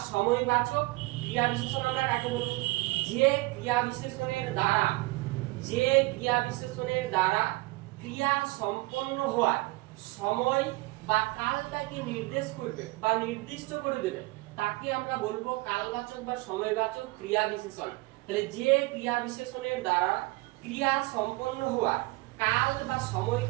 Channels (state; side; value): quieter; left; 22.4 dB